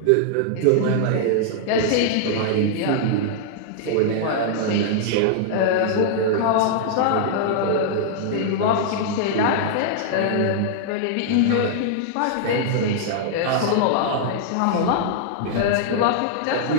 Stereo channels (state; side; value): different; both; correlation -0.01